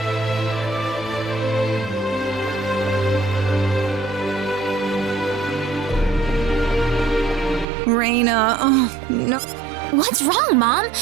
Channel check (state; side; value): drops out; left; at 7.7 s